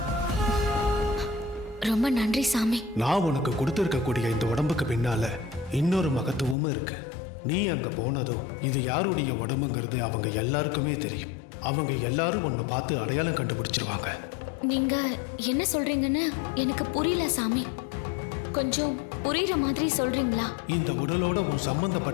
ரொம்ப நன்றி சாமி. நான் உனக்கு கொடுத்திருக்கக்கூடிய இந்த உடம்புக்கு பின்னால இன்னொரு மகத்துவமும் இருக்கு. நீ அங்க போனதும் இது யாருடைய உடம்புங்கிறது அவங்க எல்லாருக்குமே தெரியும். அவங்க எல்லாரும் உன்னை பார்த்து அடையாளம் கண்டுபிடிச்சிருவாங்க. நீங்க என்ன சொல்றீங்கன்னு எனக்கு புரியல சாமி. கொஞ்சம் புரியுற மாதிரி சொல்றீங்களா? இந்த உடலோட உன்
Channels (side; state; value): right; drops out; at 6.6 s